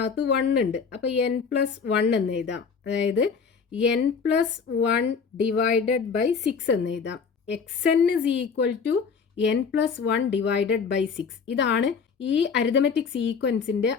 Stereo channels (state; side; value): quieter; right; 5.8 dB